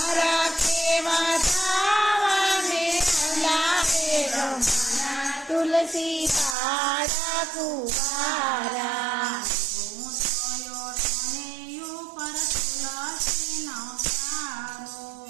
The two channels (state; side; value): drops out; left; at 6.6 s